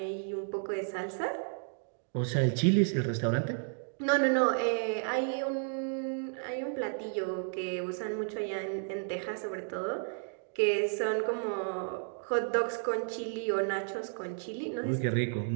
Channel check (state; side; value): silent; left; digital silence